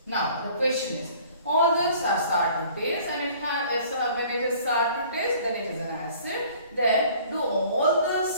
Now the question is, all those are sour to taste, and when it is sour to taste, then it is an acid. Then do all the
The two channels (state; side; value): inverted; both; correlation -0.52